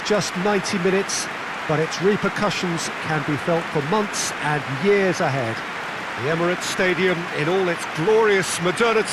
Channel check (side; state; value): both; identical; correlation 1.00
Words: just 90 minutes, but its repercussions can be felt for months and years ahead. The Emirates Stadium, in all its glorious